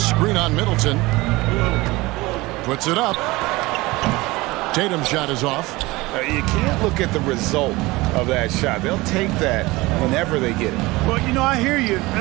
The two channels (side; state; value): left; quieter; 21.2 dB